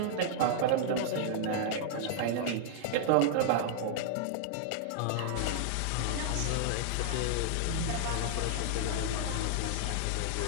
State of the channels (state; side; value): different; both; correlation -0.01